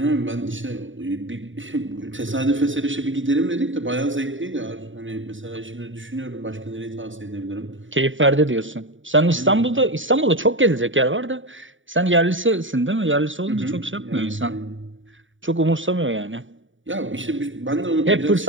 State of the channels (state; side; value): late; left; 0.56 ms